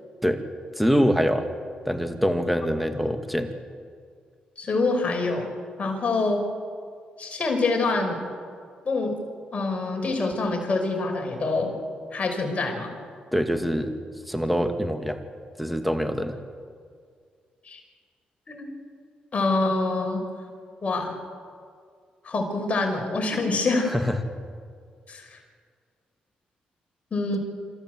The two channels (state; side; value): normal; both; correlation 0.83